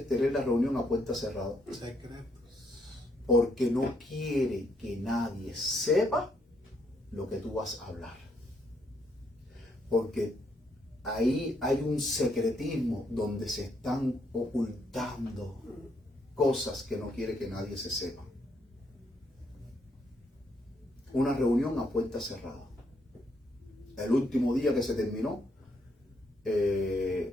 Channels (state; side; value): normal; both; correlation 0.74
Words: tener la reunión a puerta cerrada? Secretos. Porque no quiere que nadie sepa lo que tú vas a hablar. Porque ahí hay un secretismo donde se están ocultando cosas que no quiere que nadie se sepa. Una reunión a puerta cerrada. El último día que se terminó